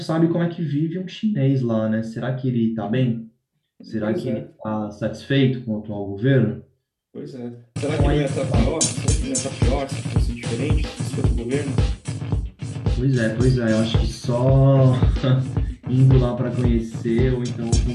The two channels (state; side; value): identical; both; correlation 1.00